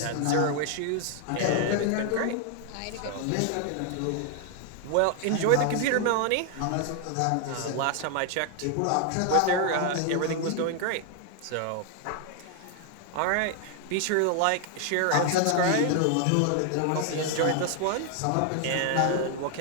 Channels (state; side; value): different; both; correlation 0.00